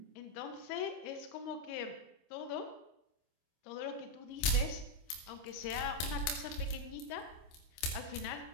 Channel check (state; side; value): late; right; 26 ms